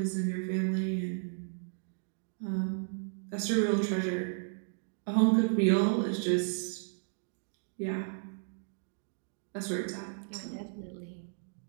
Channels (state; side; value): silent; left; digital silence